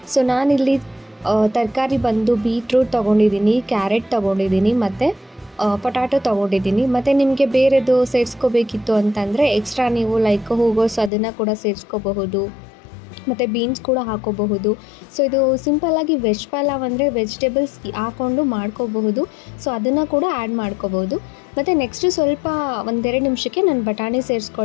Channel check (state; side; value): drops out; right; at 11.1 s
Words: ಸೊ ನಾನಿಲ್ಲಿ ತರಕಾರಿ ಬಂದು ಬೀಟ್ರೂಟ್ ತೊಗೊಂಡಿದ್ದೀನಿ, ಕ್ಯಾರೆಟ್ ತೊಗೊಂಡಿದ್ದೀನಿ ಮತ್ತು ಪೊಟ್ಯಾಟೊ ತೊಗೊಂಡಿದ್ದೀನಿ. ಮತ್ತು ನಿಮಗೆ ಬೇರೆದು ಸೇರಿಸ್ಕೋಬೇಕಿತ್ತು ಅಂತಂದರೆ ಎಕ್ಸ್ಟ್ರಾ ನೀವು ಲೈಕ್ ಹೂಗೋಸ್ ಅದನ್ನು ಕೂಡ ಸೇರಿಸ್ಕೋಬಹುದು, ಮತ್ತು ಬೀನ್ಸ್ ಕೂಡ ಹಾಕೋಬಹುದು. ಸೊ ಇದು ಸಿಂಪಲ್ಲಾಗಿ ವೆಜ್ ಪಲಾವ್ ಅಂದರೆ ವೆಜಿಟೇಬಲ್ಸ್ ಹಾಕ್ಕೊಂಡು ಮಾಡ್ಕೋಬಹುದು. ಸೊ ಅದನ್ನು ಕೂಡ ಆ್ಯಡ್ ಮಾಡ್ಕೋಬೋದು. ಮತ್ತು ನೆಕ್ಸ್ಟು ಸ್ವಲ್ಪ ಒಂದೆರಡು ನಿಮಿಷಕ್ಕೆ ನಾನು ಬಟಾಣಿ